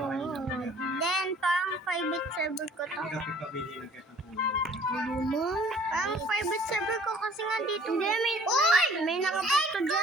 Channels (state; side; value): normal; both; correlation 0.54